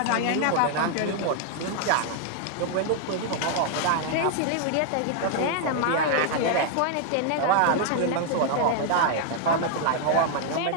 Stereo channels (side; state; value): both; different; correlation 0.00